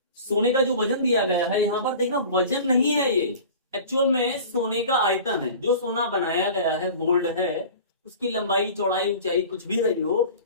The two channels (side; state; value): both; inverted; correlation -0.40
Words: सोने का जो वजन दिया गया है यहाँ पर देखना, वजन नहीं है ये, एक्चुअल में सोने का आयतन है। जो सोना बनाया गया है, गोल्ड है, उसकी लंबाई चौड़ाई ऊंचाई कुछ भी रही हो,